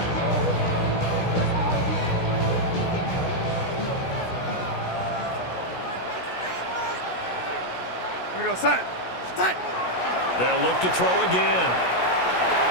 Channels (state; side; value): late; right; 16 ms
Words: Here we go, set. Set. They'll look to throw again.